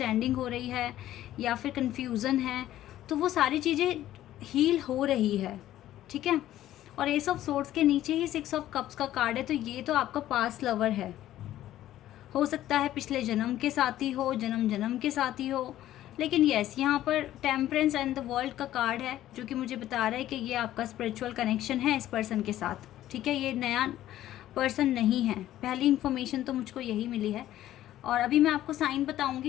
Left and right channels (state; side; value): quieter; right; 13.4 dB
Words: हो रही है या फिर कन्फ्यूज़न है, तो वो सारी चीज़ें हील हो रही है। ठीक है, और एस ऑफ सोर्ड्स के नीचे ही 6 ऑफ कप्स का कार्ड है। तो ये तो आपका पास्ट लवर है, हो सकता है पिछले जन्म के साथी हो, जन्म जन्म के साथी हो, लेकिन येस, यहाँ पर टेम्परेंस एंड द वर्ल्ड का कार्ड है जो कि मुझे बता रहा है कि ये आपका स्पिरिचुअल कनेक्शन है इस पर्सन के साथ, ठीक है। ये नया पर्सन नहीं है, पहली इन्फॉर्मेशन तो मुझको यही मिली है। और अभी मैं आपको साइन